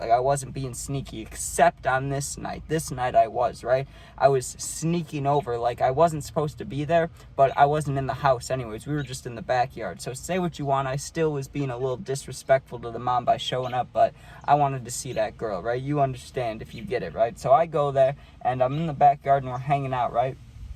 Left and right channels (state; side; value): identical; both; correlation 1.00